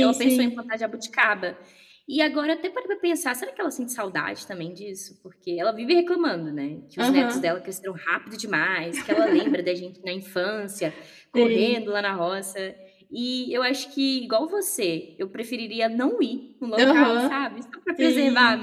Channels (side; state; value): both; identical; correlation 1.00